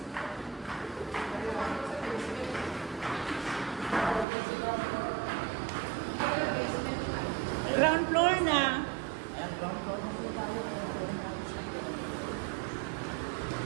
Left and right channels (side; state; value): left; drops out; at 4.2 s